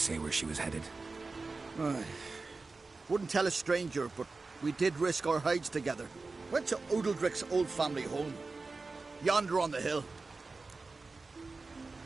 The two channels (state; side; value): quieter; left; 3.8 dB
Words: where she was headed? Wouldn't tell a stranger, but we did risk our hides together. Went to Odeldrick's old family home. Yonder on the hill.